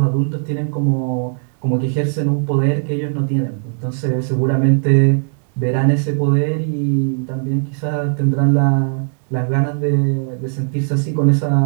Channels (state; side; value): silent; left; digital silence